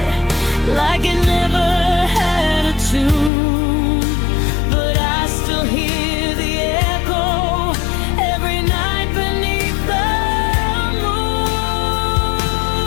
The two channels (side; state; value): right; drops out; at 3.3 s